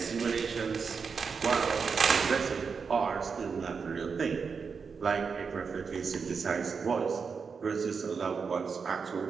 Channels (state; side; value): quieter; left; 5.5 dB